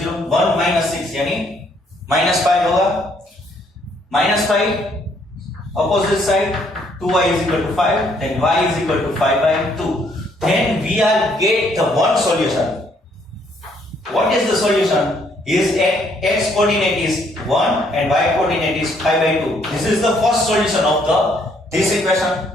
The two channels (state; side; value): normal; both; correlation 0.67